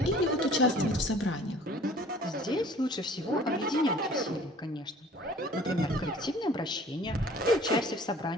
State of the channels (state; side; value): normal; both; correlation 0.50